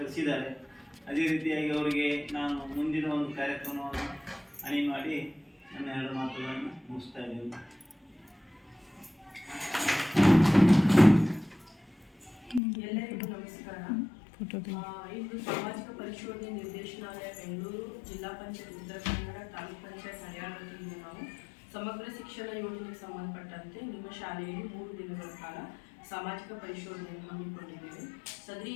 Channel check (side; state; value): right; drops out; at 12.6 s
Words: ಅದೇ ರೀತಿಯಾಗಿ ಅವರಿಗೆ ನಾನು ಮುಂದಿನ ಒಂದು ಕಾರ್ಯಕ್ರಮವನ್ನು ಅಣಿ ಮಾಡಿ ನನ್ನ ಎರಡು ಮಾತುಗಳನ್ನು ಮುಗಿಸ್ತಾ ಇದ್ದೇನೆ. ಎಲ್ಲರಿಗೂ ನಮಸ್ಕಾರ. ಇಂದು ಸಾಮಾಜಿಕ ಪರಿಶೋಧನೆ ನಿರ್ದೇಶನಾಲಯ ಬೆಂಗಳೂರು, ಜಿಲ್ಲಾ ಪಂಚಾಯತ್ ಉತ್ತರ ಕನ್ನಡ, ತಾಲೂಕು ಪಂಚಾಯತ್ ಹರಿಯಾಣ ವತಿಯಿಂದ ನಾವು ಸಮಗ್ರ ಶಿಕ್ಷಣ ಯೋಜನೆಗೆ ಸಂಬಂಧಪಟ್ಟಂತೆ ನಿಮ್ಮ ಶಾಲೆಯಲ್ಲಿ 3 ದಿನಗಳ ಕಾಲ ಸಾಮಾಜಿಕ ಪರಿಶೋಧನೆಯನ್ನು ಹಮ್ಮಿಕೊಂಡಿದ್ದೇವೆ. ಸದರಿ